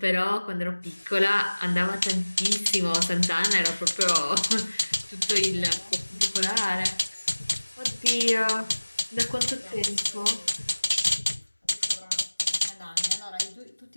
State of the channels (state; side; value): inverted; both; correlation -1.00